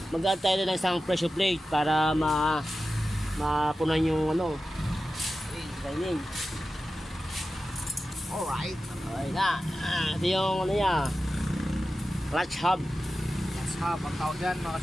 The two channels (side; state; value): both; normal; correlation 0.93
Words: mag-add tayo ng isang pressure plate para mapunan yung lining. Alright. Okay na. Ito yung niya. Clutch hub. Clutch hub ang tawag yan mga